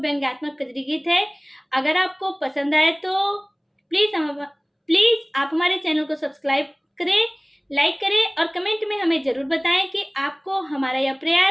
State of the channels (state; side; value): identical; both; correlation 1.00